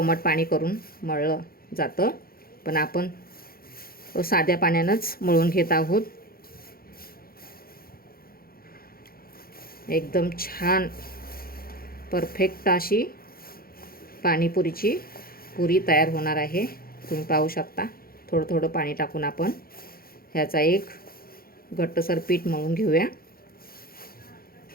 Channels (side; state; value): right; late; 0.43 ms